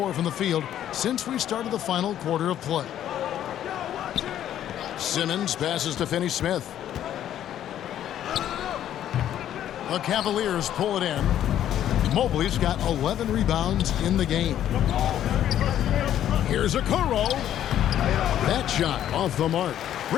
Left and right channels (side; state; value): right; quieter; 11.1 dB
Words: from the field since we started the final quarter of play. Simmons passes to Finney-Smith. The Cavaliers pull it in. Mobley's got 11 rebounds in the game. Here's Okoro. That shot off the mark.